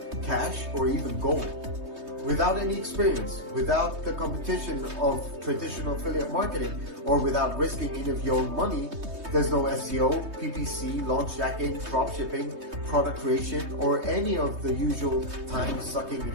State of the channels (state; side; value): late; left; 3.2 ms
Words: cash, or even gold. Without any experience, without the competition of traditional affiliate marketing, or without risking any of your own money, there's no SEO, PPC, launch jacking, dropshipping, product creation, or any of the usual time-sucking